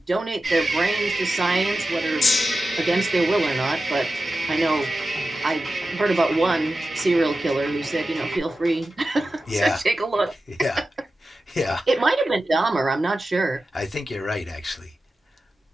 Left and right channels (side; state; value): both; normal; correlation 0.93